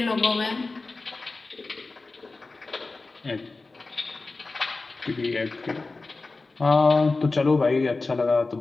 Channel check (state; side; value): quieter; right; 3.6 dB